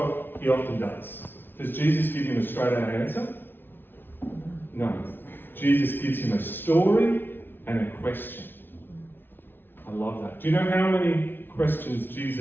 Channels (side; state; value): right; late; 0.10 ms